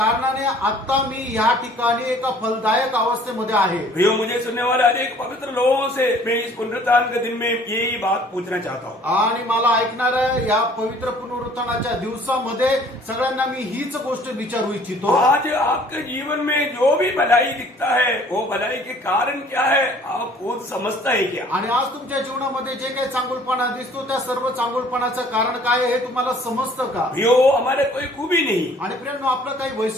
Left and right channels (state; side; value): normal; both; correlation 0.55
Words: आता मी या ठिकाणी एका फलदायक अवस्थेमध्ये आहे। प्रियो, मुझे सुनने वाले अनेक पवित्र लोगों से मैं इस पुनरुत्थान के दिन में यही बात पूछना चाहता हूँ। आणि मला ऐकणाऱ्या या पवित्र पुनरुत्थानाच्या दिवसामध्ये सगळ्यांना मी हीच गोष्ट विचारू इच्छितो। आज आपके जीवन में जो भी भलाई दिखता है, वो भलाई के कारण क्या है आप खुद समझता है क्या? आणि आज तुमच्या जीवनामध्ये जे काही चांगुलपणा दिसतो त्या सर्व चांगुलपणाचं कारण काय आहे हे तुम्हाला समजतं का? प्रियो, हमारे कोई खूबी नहीं, आणि प्रियांनो, आपलं काही